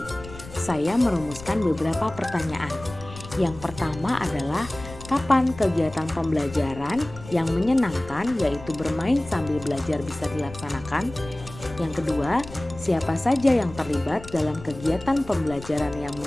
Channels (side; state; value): left; noise; rumble, 15 dB below the sound